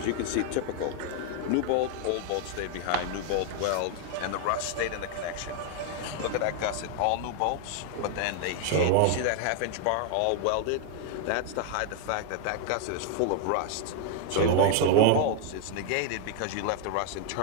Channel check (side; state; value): both; different; correlation 0.00